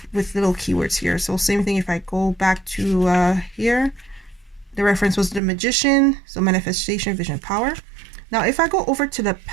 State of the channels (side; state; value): left; drops out; at 5.4 s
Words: with little keywords here. So same thing. If I go back to here, the reference was the Magician, so manifestation, vision, power. Now, if I go over to the